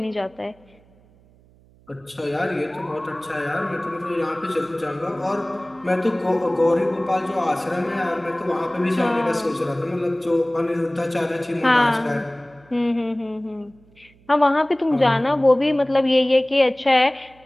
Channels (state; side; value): noise; right; hum, 29 dB below the sound